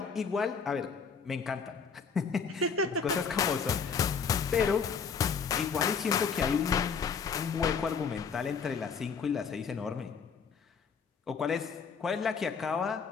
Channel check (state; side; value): quieter; right; 6.0 dB